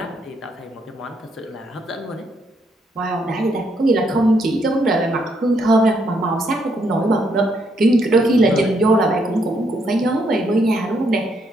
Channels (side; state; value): both; normal; correlation 0.74